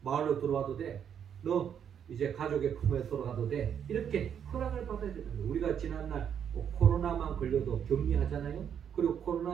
마을로 들어와도 돼. 너 이제 가족의 품에 들어가도 돼. 이렇게 허락을 받아야 되는 거예요. 우리가 지난날 코로나만 걸려도 격리하잖아요. 그리고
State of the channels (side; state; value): left; quieter; 8.4 dB